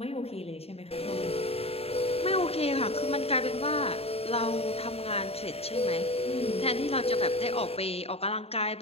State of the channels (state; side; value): late; right; 0.29 ms